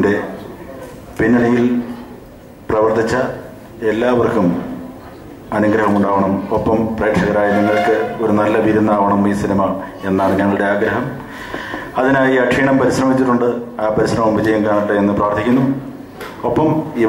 പിന്നണിയിൽ പ്രവർത്തിച്ച എല്ലാവർക്കും അനുഗ്രഹമുണ്ടാവണം. ഒപ്പം പ്രേക്ഷകരായ നിങ്ങൾക്ക് ഒരു നല്ല വിരുന്നാവണം ഈ സിനിമ എന്നാണ് ഞങ്ങളുടെ ആഗ്രഹം. അതിനായി അക്ഷീണം പരിശ്രമിച്ചിട്ടുണ്ട്. ആ പരിശ്രമം വിജയം കാണട്ടെ എന്ന് പ്രാർത്ഥിക്കുന്നു. ഒപ്പം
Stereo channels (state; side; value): identical; both; correlation 1.00